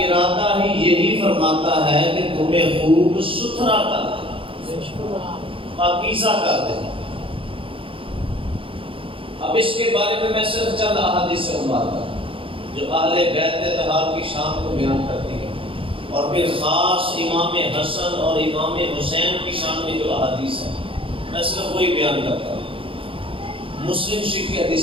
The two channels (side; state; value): left; late; 0.26 ms